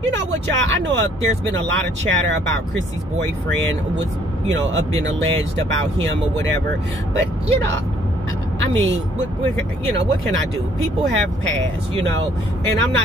you know what, y'all, I know there's been a lot of chatter about Chrissy's boyfriend was, you know, been alleged about him or whatever. But, you know, I mean, you know, what can I do? People have past, you know, and I'm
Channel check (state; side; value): normal; both; correlation 0.63